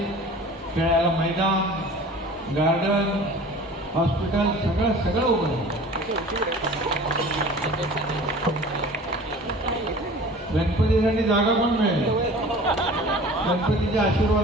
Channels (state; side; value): normal; both; correlation 0.43